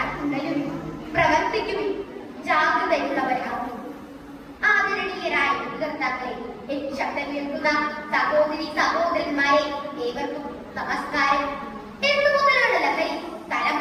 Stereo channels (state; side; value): identical; both; correlation 1.00